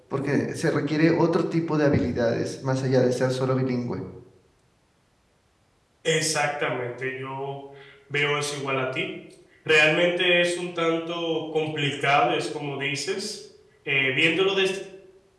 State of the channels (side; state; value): both; identical; correlation 1.00